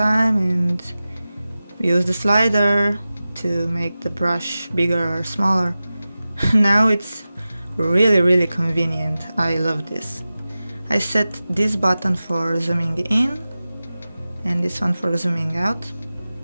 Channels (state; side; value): inverted; both; correlation -0.95